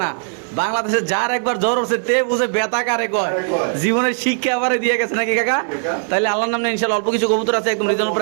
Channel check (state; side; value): silent; left; 66 dB below the other